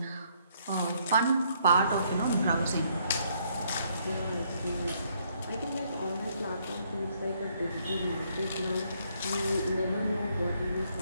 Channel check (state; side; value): inverted; both; correlation -0.70